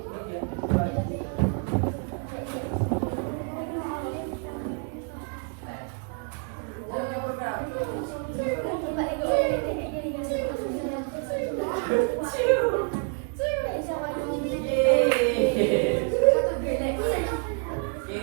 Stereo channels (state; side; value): quieter; left; 39.9 dB